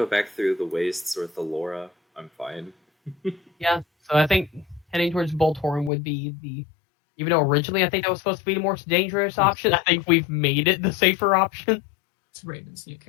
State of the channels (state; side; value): drops out; right; at 5.9 s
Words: back through the wastes or Thalora, I'm fine. Yeah, so I think heading towards Boltorum would be even though originally I think that was supposed to be the more dangerous option, I think we've made it the safer option. It's Raven's new